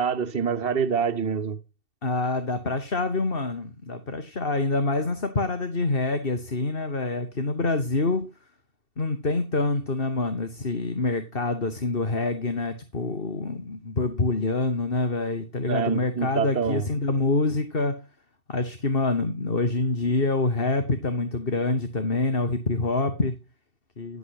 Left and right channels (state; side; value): late; right; 2.7 ms